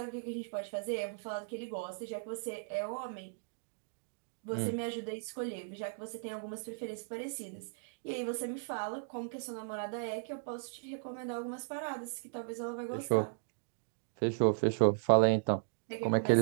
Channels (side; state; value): left; silent; digital silence